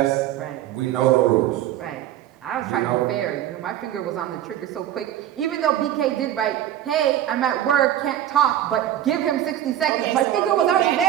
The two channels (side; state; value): left; quieter; 11.9 dB